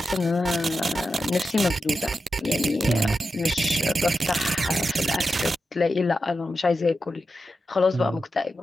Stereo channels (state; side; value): normal; both; correlation 0.90